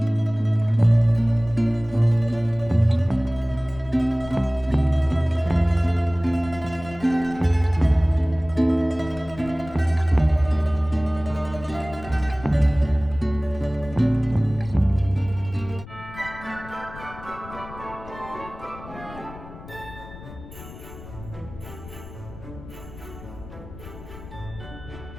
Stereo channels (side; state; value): left; noise; rumble, 16 dB below the sound